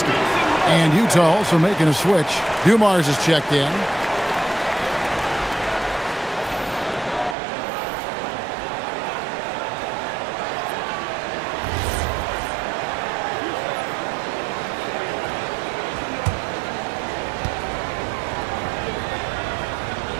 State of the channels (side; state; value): left; drops out; at 7.4 s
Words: And Utah also making a switch. Dumars is checked in.